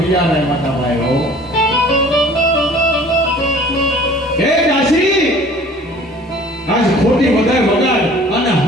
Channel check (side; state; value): both; normal; correlation 0.49